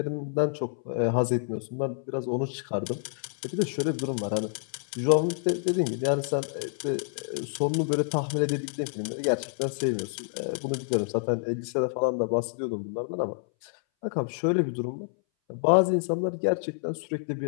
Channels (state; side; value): silent; right; 59 dB below the other